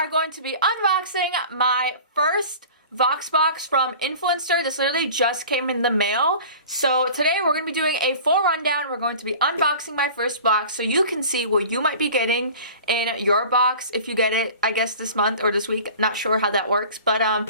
going to be unboxing my first Vox Box from Influenster. This literally just came in the mail. So today we're going to be doing a full rundown. We're going to be unboxing my first box so you can see what you might be getting in your box if you get it, I guess, this month or this week. Not sure how that works. But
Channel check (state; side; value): inverted; both; correlation -0.41